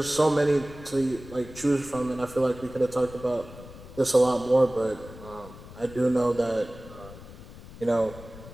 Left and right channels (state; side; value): noise; left; rumble, 17 dB below the sound